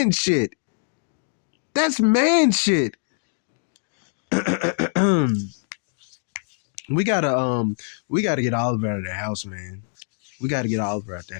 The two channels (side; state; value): right; silent; digital silence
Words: shit. We gotta get Oliver out of the house, man. We gotta get Oliver out